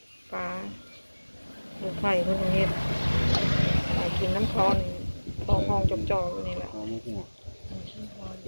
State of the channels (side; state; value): both; inverted; correlation -1.00